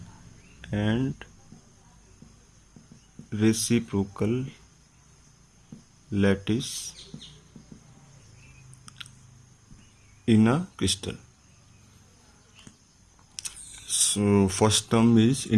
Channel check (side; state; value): both; identical; correlation 1.00